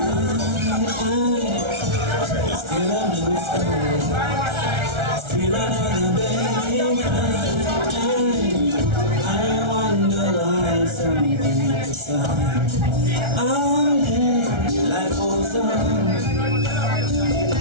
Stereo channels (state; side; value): late; left; 1.3 ms